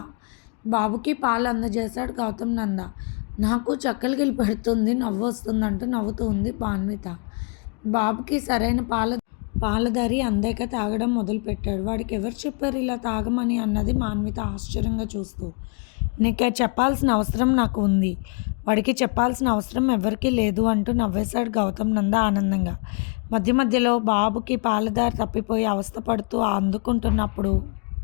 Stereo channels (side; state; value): right; quieter; 36.8 dB